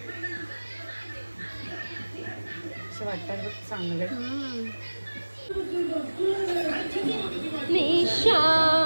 असं वाटतं बघ चांगलं.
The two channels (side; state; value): both; inverted; correlation -1.00